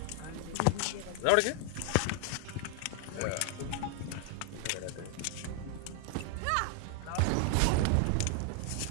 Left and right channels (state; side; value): different; both; correlation 0.01